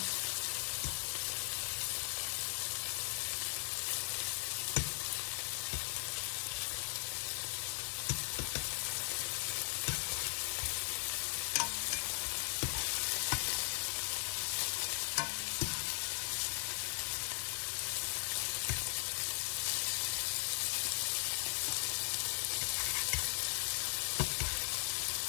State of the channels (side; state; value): right; silent; digital silence